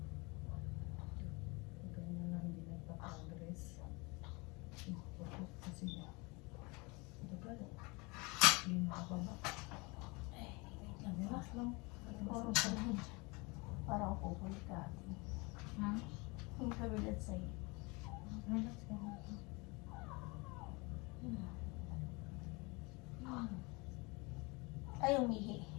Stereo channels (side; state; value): right; quieter; 27.2 dB